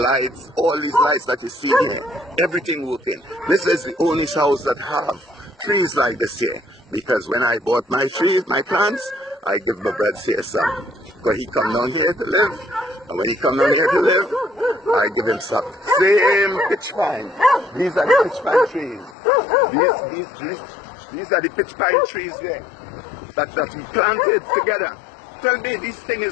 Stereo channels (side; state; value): right; drops out; at 19.2 s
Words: All these lights that you see here, everything working. This is the only house that have trees like this here. Because when I bought my trees, my plants, I give my bread here some. Because he come down here to live. And when he come down here to live, I give him some. Same pitch pine. These are the pitch pine trees. These are the pitch pine trees there. That we planted together. Tell me, this thing